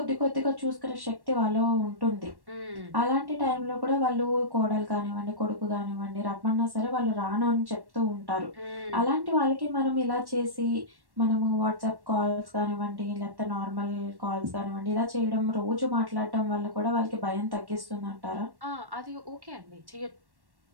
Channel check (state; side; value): late; left; 1.1 ms